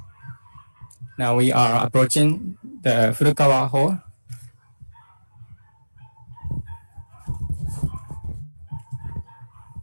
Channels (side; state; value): both; inverted; correlation -1.00